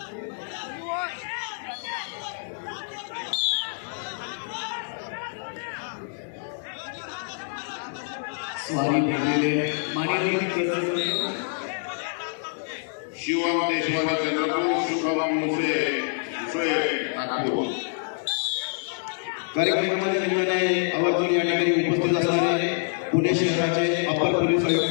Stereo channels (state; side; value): silent; right; digital silence